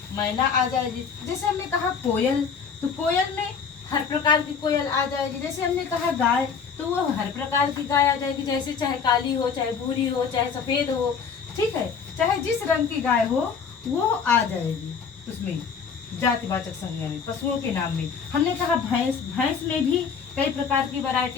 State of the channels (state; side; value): quieter; right; 6.2 dB